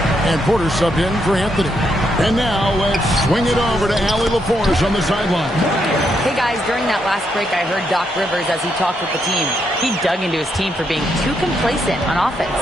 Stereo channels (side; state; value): both; normal; correlation 0.78